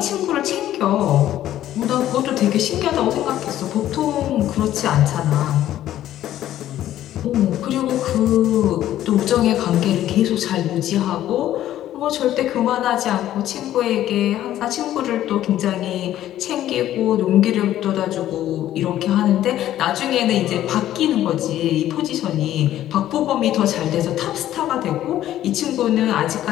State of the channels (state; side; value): quieter; right; 12.7 dB